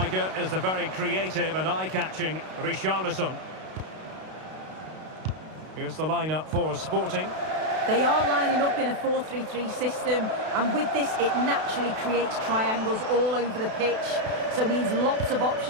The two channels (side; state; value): left; late; 32 ms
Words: is the very creative and eye-catching Richarlison. Here's the lineup for Sporting. They are lining up in a 4-3-3 system, and with this it naturally creates triangles all over the pitch, so it means lots of